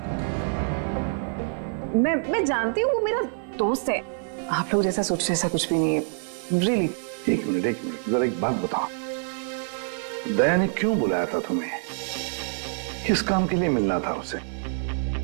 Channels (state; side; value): silent; left; 61 dB below the other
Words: मैं जानती हूँ, वो मेरा दोस्त है। आप लोग जैसा सोच रहे ऐसा कुछ भी नहीं है, रियली। एक मिनट, जरा एक बात बताओ, दया ने क्यों बुलाया था तुम्हें? किस काम के लिए मिलना था उसे?